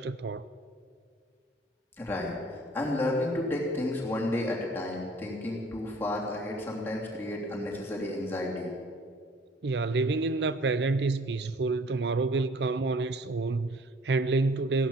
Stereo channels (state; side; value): normal; both; correlation 0.53